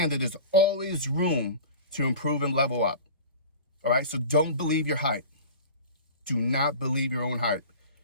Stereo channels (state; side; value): inverted; both; correlation -0.38